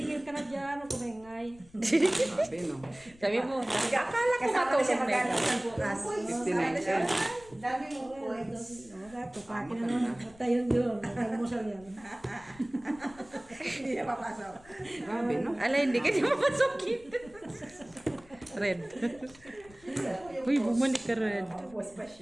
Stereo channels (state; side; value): noise; left; rumble, 24 dB below the sound